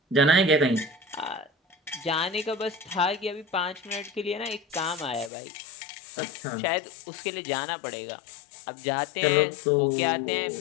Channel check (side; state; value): right; drops out; at 5.3 s